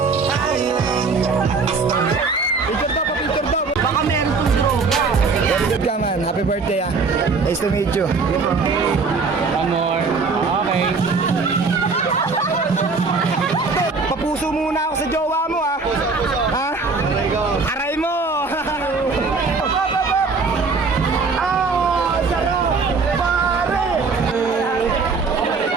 Picture daw, pa-picture daw. Baka meron pong droga. Good ka man. Happy birthday ah. Nice to meet you. One more. Okay. Papuso muna ako sa jowa mo ah. Ha? Aray mo.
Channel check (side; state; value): left; quieter; 4.4 dB